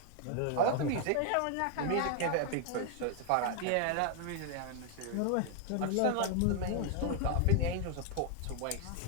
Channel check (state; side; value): different; both; correlation 0.00